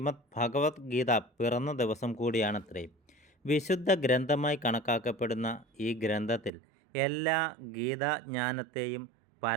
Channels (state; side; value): drops out; left; at 6.5 s